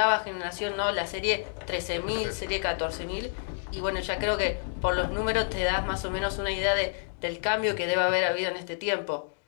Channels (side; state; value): right; silent; digital silence